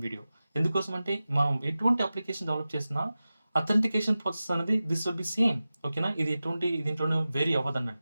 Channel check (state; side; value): inverted; both; correlation -0.95